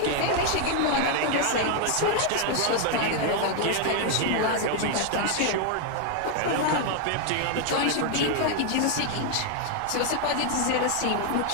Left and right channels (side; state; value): both; different; correlation 0.00